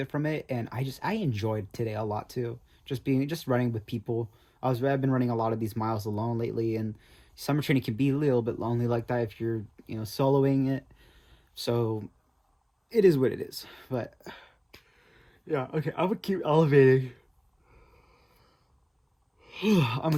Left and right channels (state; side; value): identical; both; correlation 1.00